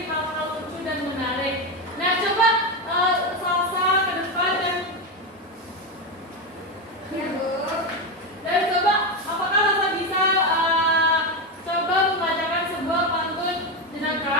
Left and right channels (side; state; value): both; normal; correlation 0.12